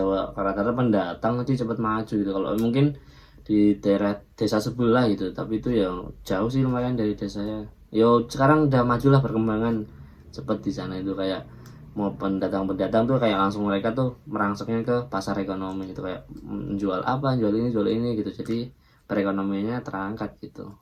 rata-rata pendatang nanti cepat maju gitu. Kalau mungkin di daerah desa sebelah gitu, tapi itu ya jauh sih lumayan dari desa saya. Yo sekarang udah majulah perkembangan cepet di sana itu, kayak mau pendatang tuh kayak langsung mereka tuh merangseknya ke pasar ekonomi gitu, kayak jual apa, jual ini gitu. Jadi perekonomiannya terangkat gitu.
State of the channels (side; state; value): both; identical; correlation 1.00